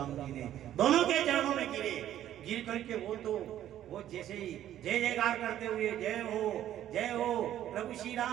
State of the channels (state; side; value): quieter; left; 11.8 dB